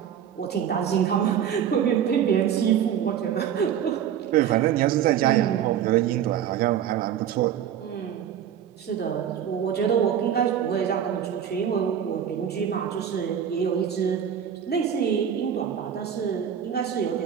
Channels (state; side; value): quieter; left; 9.2 dB